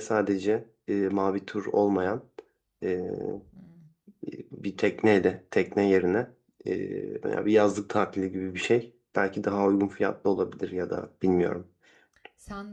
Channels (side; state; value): both; identical; correlation 1.00